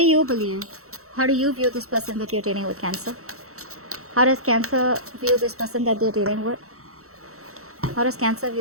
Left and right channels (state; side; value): late; left; 0.64 ms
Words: you believe? How do you view this person that you're dealing with, Cancer? How does Cancer view this person that they're dealing with? How does Cancer